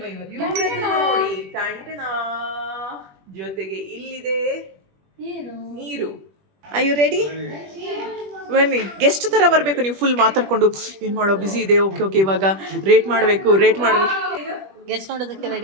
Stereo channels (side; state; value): left; late; 21 ms